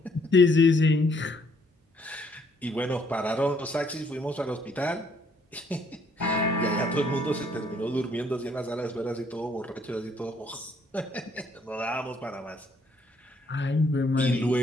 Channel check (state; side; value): normal; both; correlation 0.67